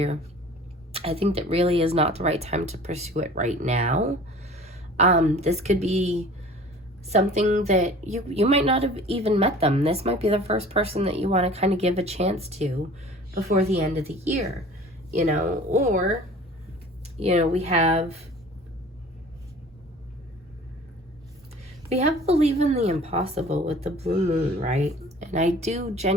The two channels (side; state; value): both; normal; correlation 0.45